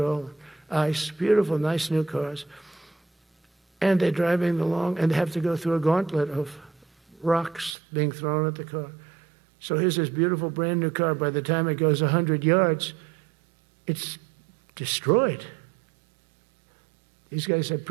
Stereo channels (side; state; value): left; drops out; at 7.8 s